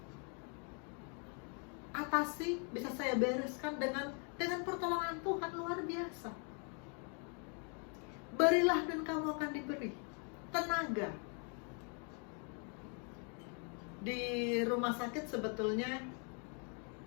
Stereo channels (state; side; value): quieter; right; 39.5 dB